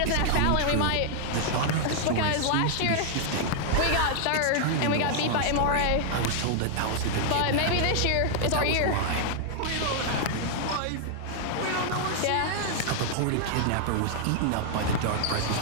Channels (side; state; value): both; different; correlation 0.00